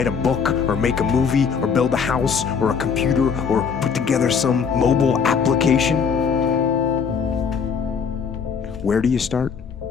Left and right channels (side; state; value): right; quieter; 6.3 dB